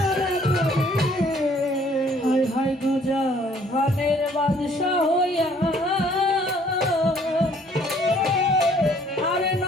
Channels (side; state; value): both; normal; correlation 0.60